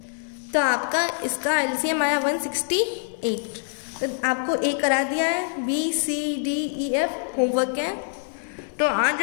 तो आपका इसका एलसीएम आया 168। तो आपको ए करा दिया है, B C D E F homework है। तो आज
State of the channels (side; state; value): right; silent; 62 dB below the other